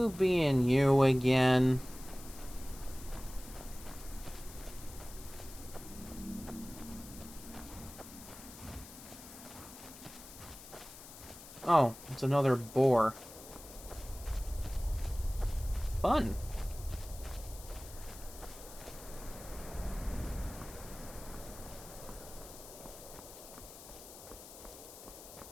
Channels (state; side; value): noise; left; hiss, 16 dB below the sound